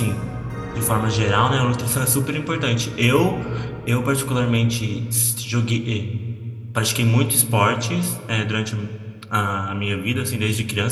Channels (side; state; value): both; identical; correlation 1.00